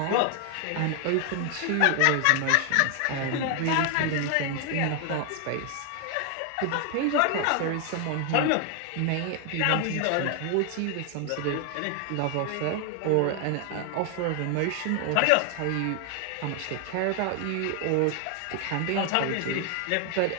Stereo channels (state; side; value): different; both; correlation 0.00